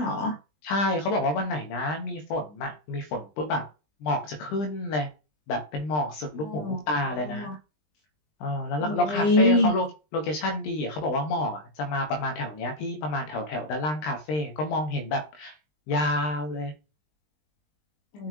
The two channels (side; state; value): right; late; 20 ms